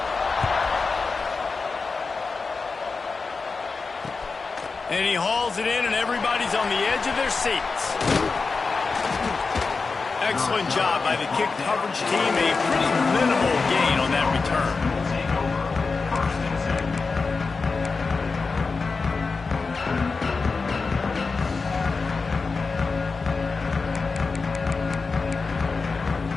And he hauls it in, and everybody's on the edge of their seats. Excellent job by the kick coverage team. A pretty minimal gain on that return.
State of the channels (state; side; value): quieter; right; 4.4 dB